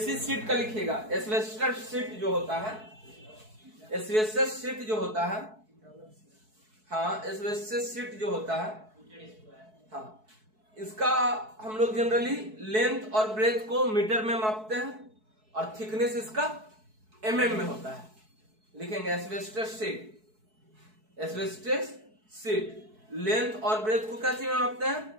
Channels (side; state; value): left; late; 4.6 ms